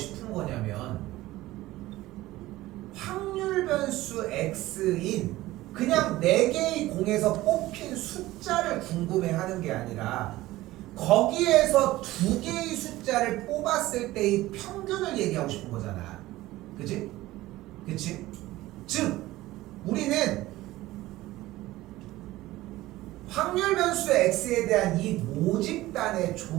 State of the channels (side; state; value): left; quieter; 17.2 dB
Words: 거냐면 확률 변수 x인 그냥 4개의 공에서 뽑힌 숫자를 궁금해하는 게 아니라 거기에서 2개의 숫자를 뽑았을 때의 평균을 얘기하고 싶은 거잖아. 그치? 그치? 즉 우리는 확률 변수 x에 대한 이 모집단의